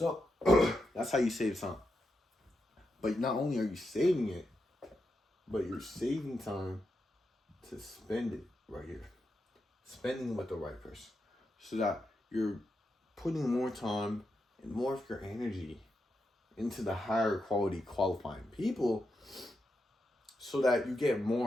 that's how you save time. But not only are you saving it, but you're saving time to spend it right here. Spending with the right person. So that you're putting more time and more of your energy into the higher quality qualifying people, so that you get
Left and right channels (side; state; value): both; normal; correlation 0.86